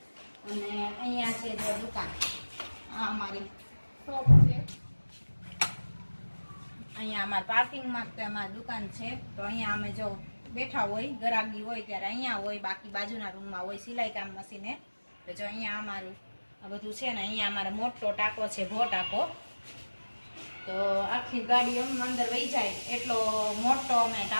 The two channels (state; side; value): inverted; both; correlation -1.00